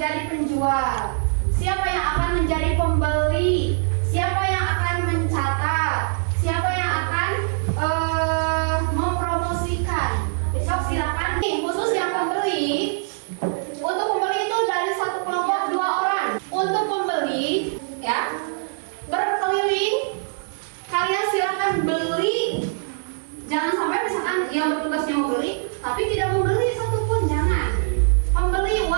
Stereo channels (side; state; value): left; silent; digital silence